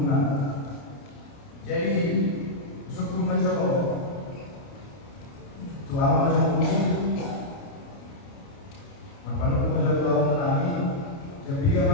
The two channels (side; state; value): right; late; 29 ms